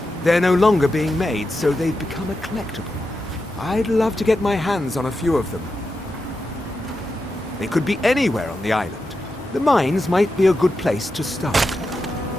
They're no longer being made, so they've become a collectible. I'd love to get my hands on a few of them. They could be anywhere on the island. The mines might be a good place to start.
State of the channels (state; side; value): normal; both; correlation 0.89